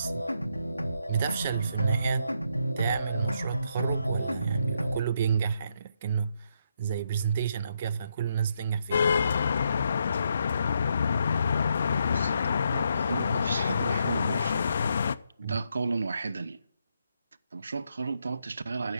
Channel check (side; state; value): both; inverted; correlation -0.78